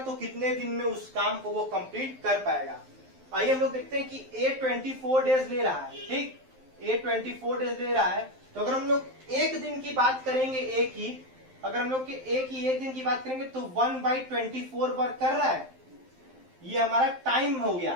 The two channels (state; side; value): late; left; 12 ms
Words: कितने दिन में उस काम को वो कंप्लीट कर पाएगा। आइए हम लोग देखते हैं कि ए 24 डेज ले रहा है, ठीक, ए 24 डेज ले रहा है। तो अगर हम लोग एक दिन की बात करेंगे ए की, अगर हम लोग एक दिन की बात करेंगे तो 1/24 वर्क कर रहा है, ये हमारा टाइम हो